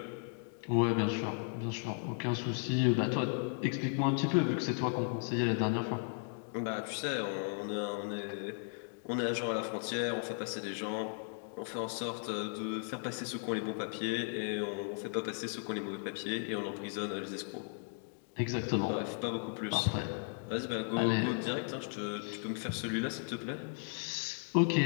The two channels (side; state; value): right; silent; 54 dB below the other